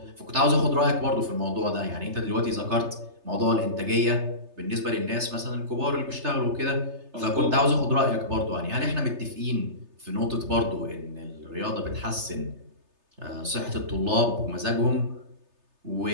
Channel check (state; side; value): late; left; 3.3 ms